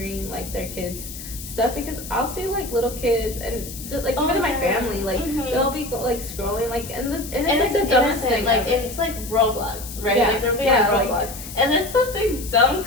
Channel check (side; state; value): left; noise; hiss, 12 dB below the sound